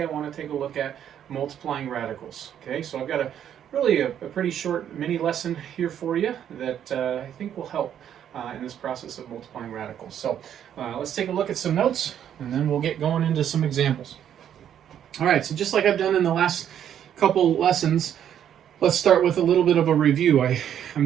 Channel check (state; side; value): quieter; left; 9.7 dB